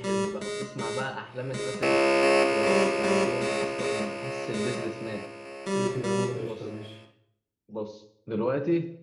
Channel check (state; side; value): identical; both; correlation 1.00